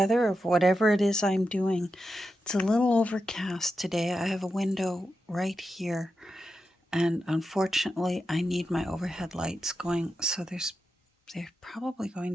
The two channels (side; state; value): both; normal; correlation 0.88